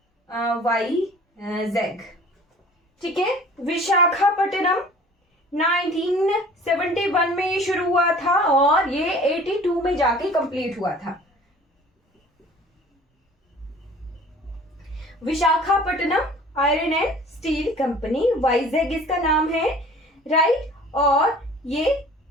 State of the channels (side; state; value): both; normal; correlation 0.47